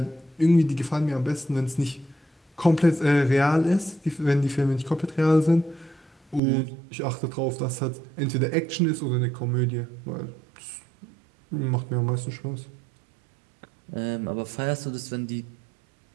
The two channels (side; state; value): left; drops out; at 6.4 s